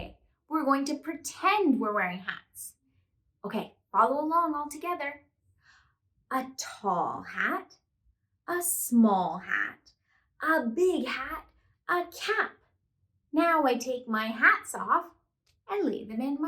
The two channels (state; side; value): identical; both; correlation 1.00